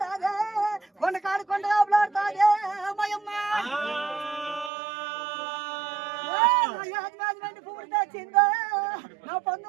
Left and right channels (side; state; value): left; drops out; at 4.7 s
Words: కొండ కాడు కొండ కాపులాడుతాదే అమ్మాయమ్మ పువ్వులు తెచ్చిందా నా